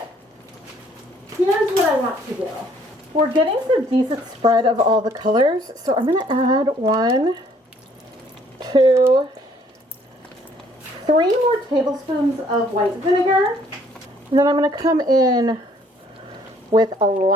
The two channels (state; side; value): normal; both; correlation 0.62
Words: here's what I want to do. We're getting some decent spread of all the colors, so I'm going to add 1, 2, 3 more tablespoons of white vinegar. And then I'm going to come in with a